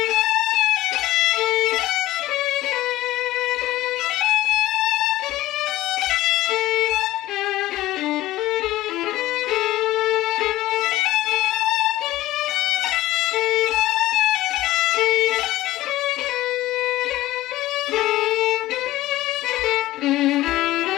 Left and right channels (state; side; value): quieter; right; 16.1 dB